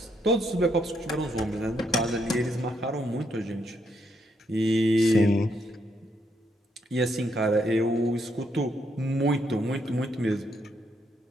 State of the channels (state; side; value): normal; both; correlation 0.76